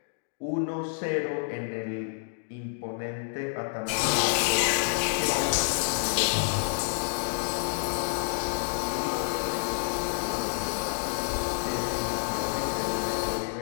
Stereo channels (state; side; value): silent; right; digital silence